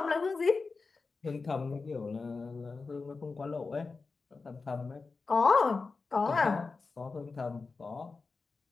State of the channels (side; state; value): right; quieter; 4.2 dB